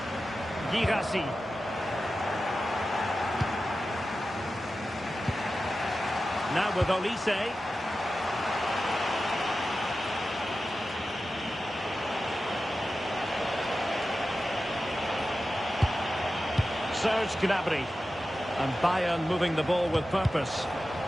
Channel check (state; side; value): normal; both; correlation 0.93